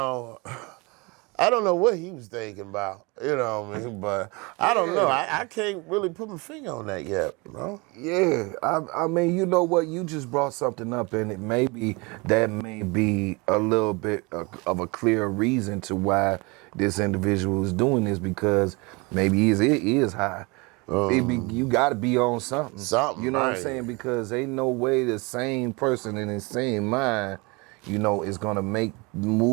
I don't know what he was thinking about, but I don't know. I can't really put my finger on that yet, Yeah, I mean, you know what? You just brought something up, and it may be a little bit of a clear reason to why this individual is doing this, because maybe it is high. You got to be on something. You know what I'm saying? Because ain't no way the same person in the same mind, is going to make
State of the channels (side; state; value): left; quieter; 27.2 dB